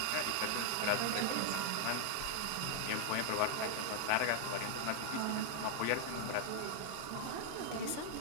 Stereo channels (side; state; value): both; different; correlation 0.00